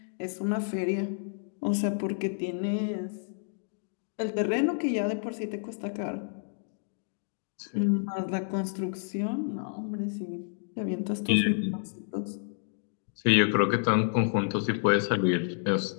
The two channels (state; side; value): silent; right; digital silence